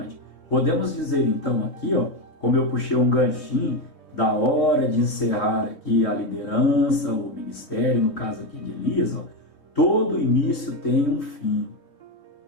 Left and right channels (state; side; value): late; right; 3.8 ms